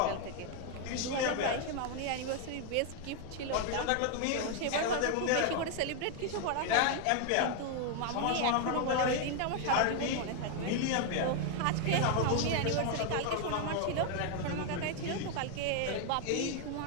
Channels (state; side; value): different; both; correlation 0.01